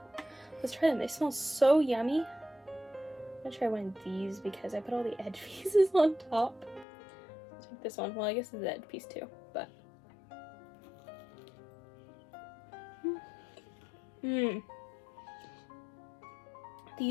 let's try them. They smell so yummy. I'm gonna try one of these because I put all the edge pieces on top. Let's take this one. Well, I guess it's the edge piece too, but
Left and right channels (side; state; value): right; drops out; at 6.9 s